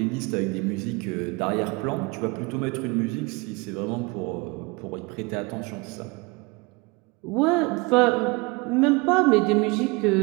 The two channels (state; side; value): quieter; left; 26.5 dB